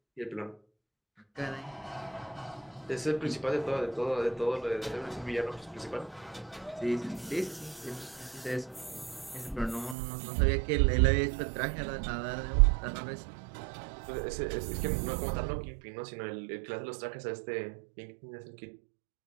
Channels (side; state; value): left; drops out; at 10.0 s